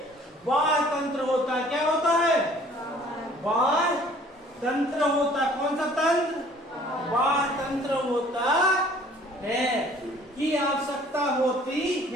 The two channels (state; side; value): normal; both; correlation 0.54